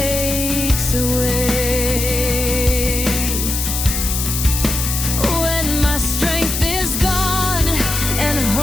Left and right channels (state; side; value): noise; left; hiss, 2 dB below the sound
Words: a way. When my strength is gone and